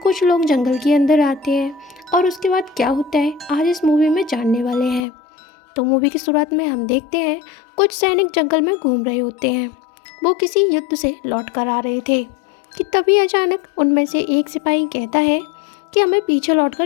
लोग जंगल के अंदर आते हैं और उसके बाद क्या होता है आज इस मूवी में जानने वाले हैं। तो मूवी की शुरुआत में हम देखते हैं कुछ सैनिक जंगल में घूम रहे होते हैं। वो किसी युद्ध से लौट कर आ रहे थे कि तभी अचानक उनमें से एक सिपाही कहता है कि हमें पीछे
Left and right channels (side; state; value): right; drops out; at 5.0 s